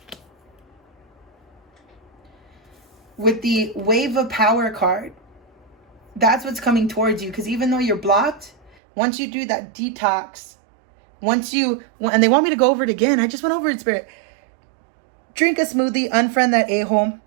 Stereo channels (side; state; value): left; drops out; at 8.8 s